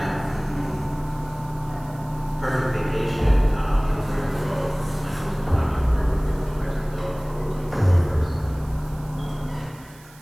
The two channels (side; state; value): right; noise; hiss, 25 dB below the sound